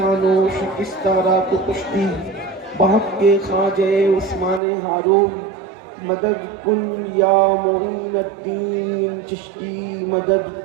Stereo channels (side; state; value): left; drops out; at 4.6 s